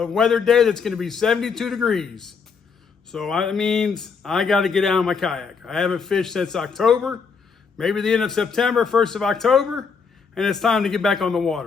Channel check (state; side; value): quieter; right; 5.6 dB